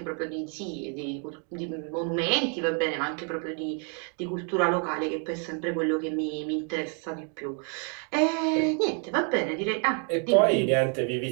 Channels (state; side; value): quieter; left; 39.5 dB